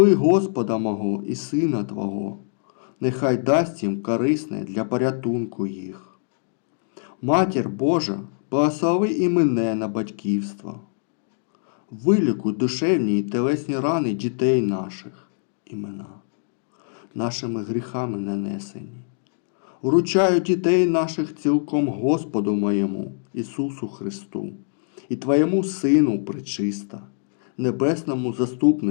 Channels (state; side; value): silent; right; digital silence